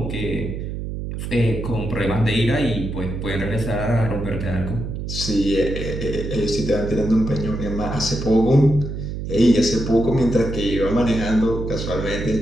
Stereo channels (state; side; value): noise; right; hum, 6 dB below the sound